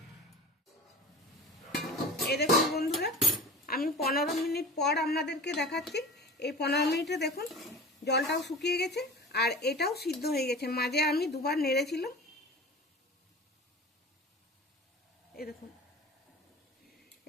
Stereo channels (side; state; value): both; normal; correlation 0.35